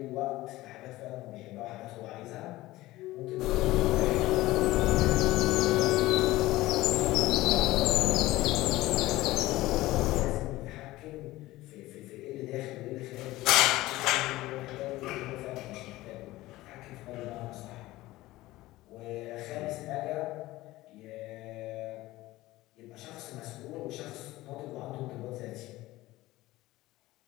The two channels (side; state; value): right; quieter; 17.8 dB